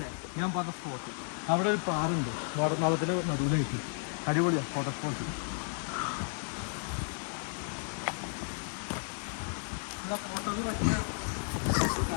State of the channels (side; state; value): right; silent; 56 dB below the other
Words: ഞാൻ പറഞ്ഞ സ്പോട്ട് അവിടെ ഒരു പാറുണ്ട്, വാടനാളത്തിന്റെ നടുവിലായിട്ട്. അടിപൊളിയാ ഫോട്ടോ സ്പോട്ട്.